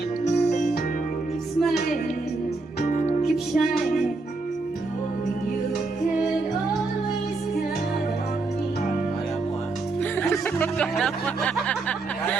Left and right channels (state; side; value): quieter; left; 3.6 dB